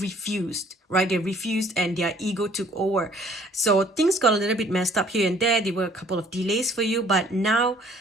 right? They refused and their ego took over. So things got a little bit messed up here and there. There were a couple of delays for you, but now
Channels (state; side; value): normal; both; correlation 0.57